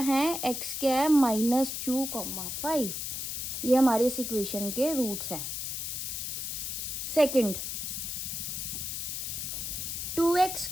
x क्या है -2, 5। ये हमारे इस इक्वेशन के रूट्स हैं। Second,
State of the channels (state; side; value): noise; left; hiss, 4 dB below the sound